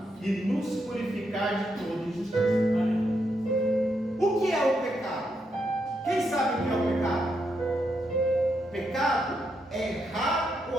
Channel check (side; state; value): both; normal; correlation 0.81